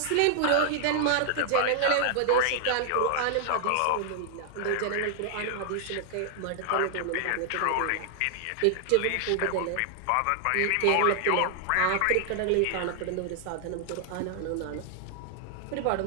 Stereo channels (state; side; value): different; both; correlation 0.00